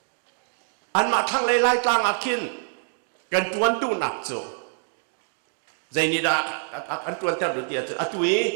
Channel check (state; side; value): silent; left; digital silence